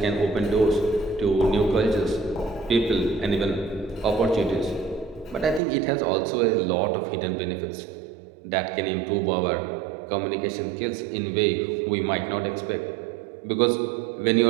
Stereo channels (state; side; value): drops out; left; at 5.6 s